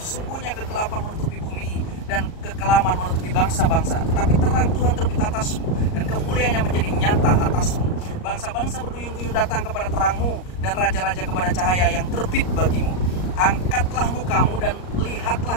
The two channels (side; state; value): right; late; 38 ms